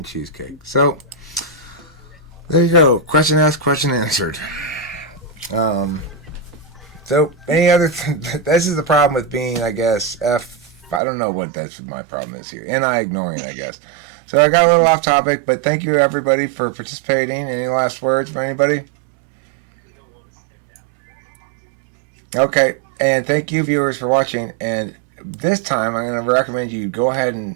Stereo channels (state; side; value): drops out; left; at 11.0 s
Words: cheesecake. So, there you go. Question asked, question answered. So, any other this is the problem with being, I guess, I don't know what my problem is here. And I ignoring, I guess. So I got a little off topic, but thank you everybody for participating. Any last words from anybody? Okay, and thank you viewers for watching. And this time I'm going to recommend you go ahead